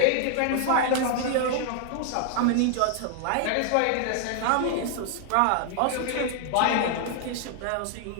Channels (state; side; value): different; both; correlation 0.00